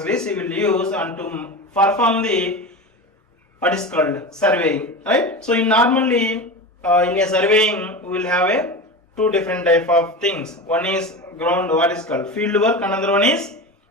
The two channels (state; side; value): normal; both; correlation 0.26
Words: he will use and to perform the what is called surveying, right? So in normally in a surveying we will have a two different type of things. One is ground, what is called field work, another one is